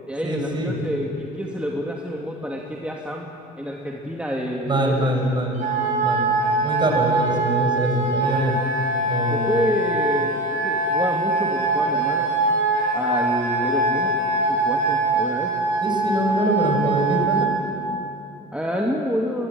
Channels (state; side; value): normal; both; correlation 0.30